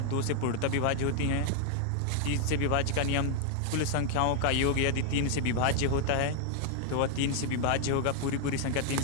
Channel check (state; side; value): different; both; correlation 0.00